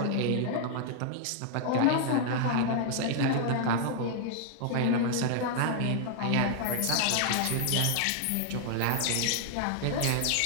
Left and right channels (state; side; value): different; both; correlation 0.00